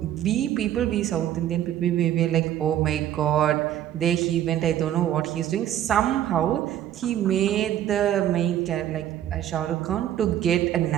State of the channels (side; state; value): left; quieter; 11.6 dB